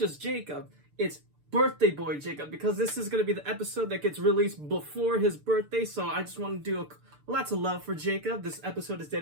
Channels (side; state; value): left; late; 6.8 ms